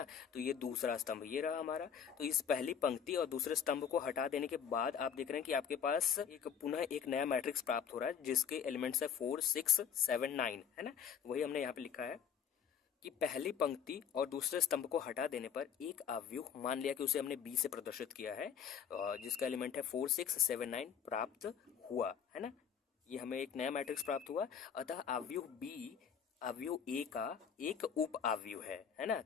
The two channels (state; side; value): quieter; right; 7.7 dB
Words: तो ये दूसरा स्तंभ ये रहा हमारा। तो इस पहली पंक्ति और दूसरे स्तंभ को हटा देने के बाद आप देख रहे हैं कि आपके पास पुनः एक नया मैट्रिक्स प्राप्त हो रहा है जिसके एलिमेंट्स है 4 6 7 9, है ना। वही हमने यहाँ पे लिखा है कि पहली पंक्ति और दूसरे स्तंभ को हटा देने पर एक अवयव, मान लिया कि उसे हमने बी से प्रदर्शित किया है, जिसका एलिमेंट है 4 6 7 9 प्राप्त हुआ, है ना। ये हमें एक नया मैट्रिक्स प्राप्त हुआ, अतः अवयव बी अवयव ए का एक उप अवयव है ना।